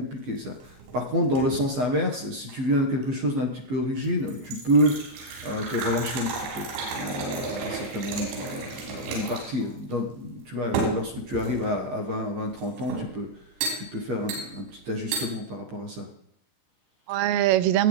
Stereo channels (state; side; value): late; left; 15 ms